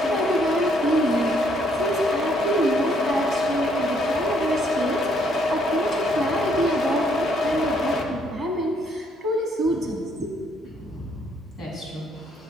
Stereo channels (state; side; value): normal; both; correlation 0.69